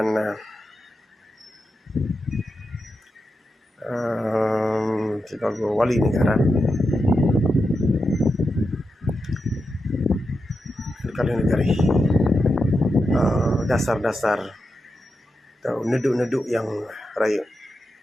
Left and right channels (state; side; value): normal; both; correlation 0.88